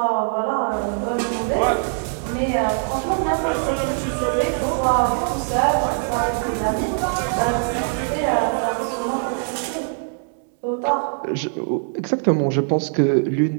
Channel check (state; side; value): silent; left; 64 dB below the other